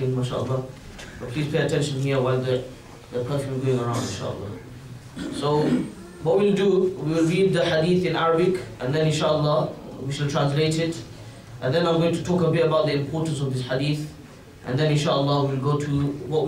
mashallah, but please pay attention here while the perfume is going around, inshallah. So what we'll do, we will read the hadith in Arabic and then inshallah we shall translate it. And then I'm going to talk a bit about the importance of this hadith. And then inshallah we'll go to what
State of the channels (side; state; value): both; identical; correlation 1.00